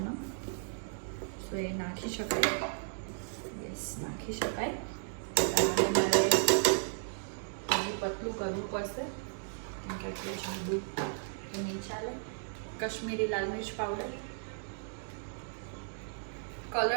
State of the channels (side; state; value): left; silent; digital silence